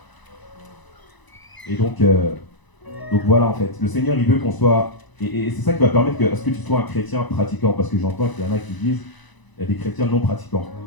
Et donc voilà en fait, le Seigneur il veut qu'on soit, et c'est ça qui va permettre à ce que tu sois un chrétien pratiquant, parce que j'entends qu'il y en a qui disent, il y a des chrétiens non pratiquants.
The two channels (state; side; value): late; right; 1.0 ms